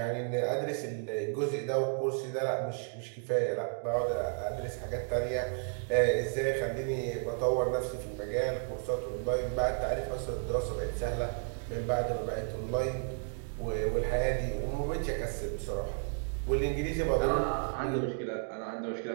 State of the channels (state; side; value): silent; left; 56 dB below the other